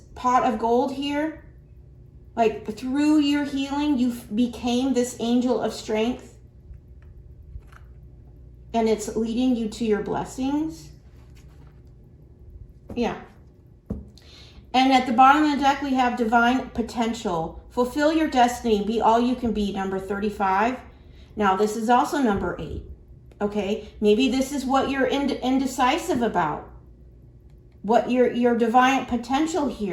pot of gold here. Like through your healing, you became this angel of strength. And it's leading you to your blessings. Yeah. And at the bottom of the deck, we have divine potential. Fulfill your destiny. Be all you can be, number 35. Now, this is also number 8. Okay? Maybe this is what you're indecisive about. What your divine potential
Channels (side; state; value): both; identical; correlation 1.00